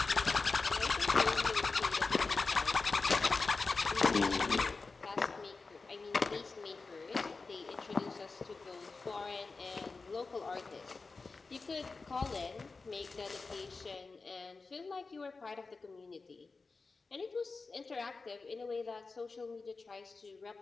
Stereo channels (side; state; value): right; quieter; 4.1 dB